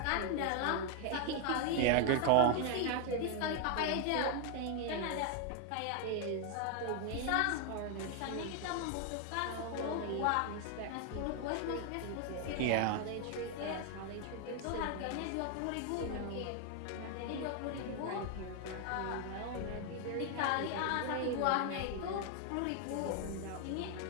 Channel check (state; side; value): different; both; correlation 0.01